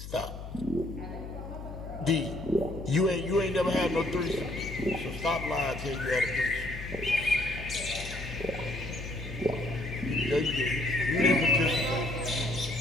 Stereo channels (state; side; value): noise; left; hum, 10 dB below the sound